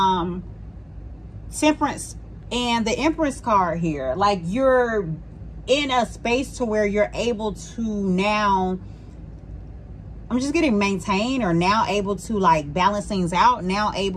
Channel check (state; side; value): identical; both; correlation 1.00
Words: Temperance and the Empress card here. Like you're in a space to where you're able to now, I'm just getting maintain, or now able to like balance things out, now